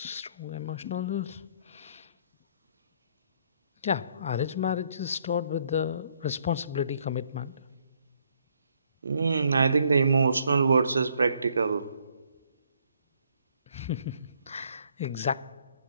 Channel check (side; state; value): both; inverted; correlation -0.67